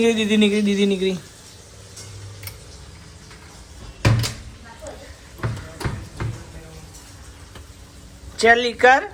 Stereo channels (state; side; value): identical; both; correlation 1.00